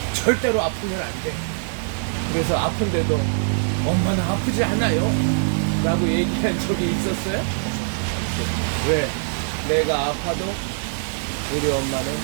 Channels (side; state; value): left; silent; digital silence